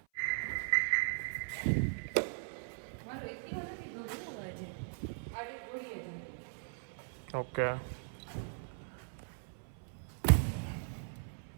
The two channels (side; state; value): left; silent; 52 dB below the other